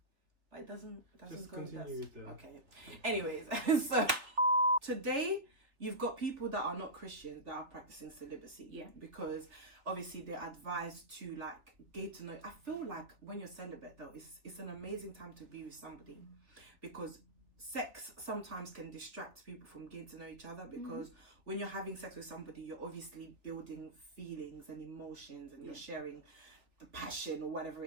But it doesn't Just go with continue that. with the... Okay. Anyways, so today you've got people that are not Christians that are practicing celibacy. Yeah. Because obviously they're advised to like get to know. I feel like when you're celibate though, it's an amazing time to be with somebody, because sex sometimes can distract people from getting to know each other, because when you're having sex with somebody, you're obviously building feelings and emotions, and you're sharing the passion or whatever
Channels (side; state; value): left; late; 3.1 ms